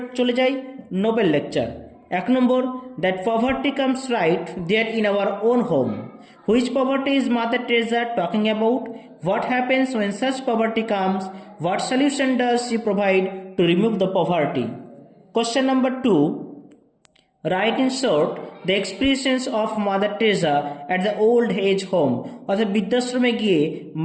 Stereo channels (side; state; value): both; identical; correlation 1.00